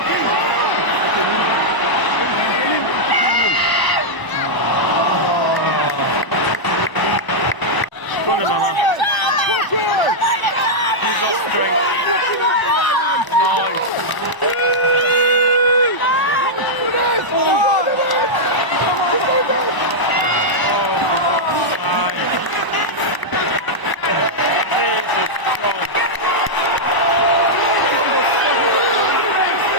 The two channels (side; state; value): right; late; 1.0 ms